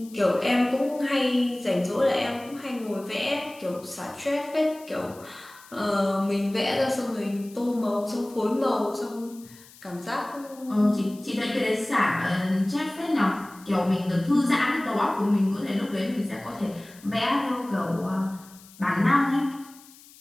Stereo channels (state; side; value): noise; left; hiss, 23 dB below the sound